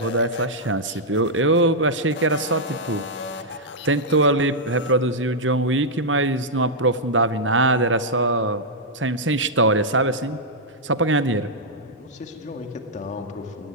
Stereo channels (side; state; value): both; normal; correlation -0.06